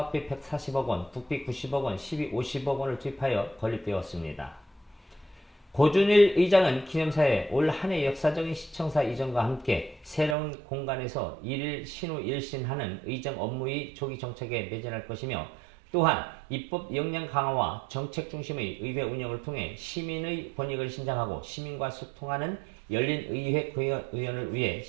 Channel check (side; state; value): left; drops out; at 10.4 s